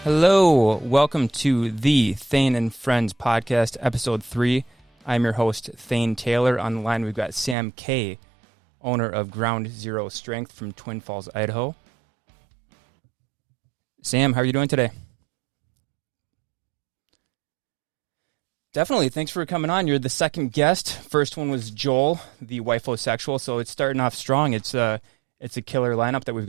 Hello, welcome to the Thane Friends Podcast-Episode 3. I'm your host, Thane Taylor. On the line, we've got Sam K., owner of Ground Zero Strength from Twin Falls, Idaho. Sam, how are you doing today? I'm doing great, man. Thanks for having me on. Definitely. Thanks for coming on. You're the second guest. First one was Joel, the wifosexual, so it's starting off strong. It's a killer lineup that we've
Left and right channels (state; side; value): drops out; left; at 7.6 s